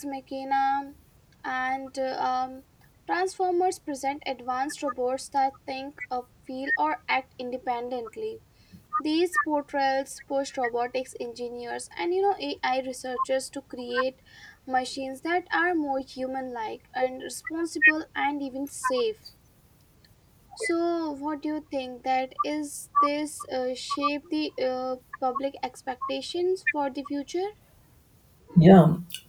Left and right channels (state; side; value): identical; both; correlation 1.00